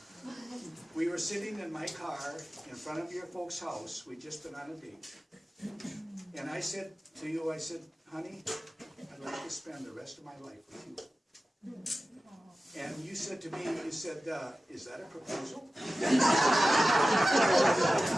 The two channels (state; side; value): normal; both; correlation 0.95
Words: we were sitting in my car in front of your folks' house. We'd just been on a date. And I said to you, I said, honey, I'd like to spend the rest of my life with you. And you said to me, you said, is that a proposal? And